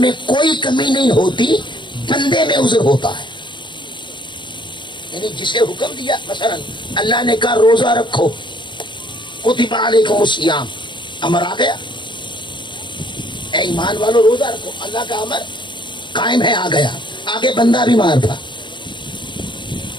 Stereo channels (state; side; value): late; right; 0.23 ms